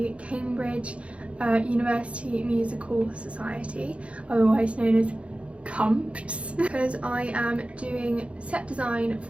Cambridge University Musical Society, otherwise known as CUMPS, because I am doing set design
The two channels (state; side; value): late; left; 0.061 ms